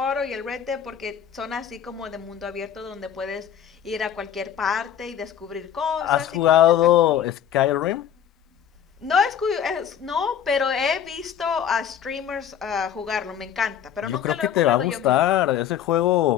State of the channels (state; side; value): quieter; right; 9.2 dB